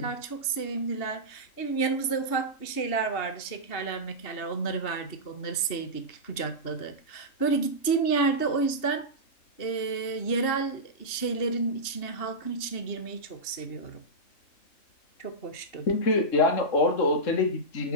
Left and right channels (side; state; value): right; late; 2.8 ms